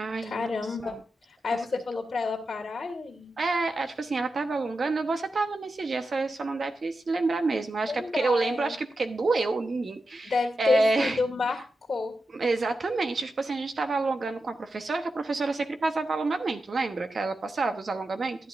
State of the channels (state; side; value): normal; both; correlation 0.90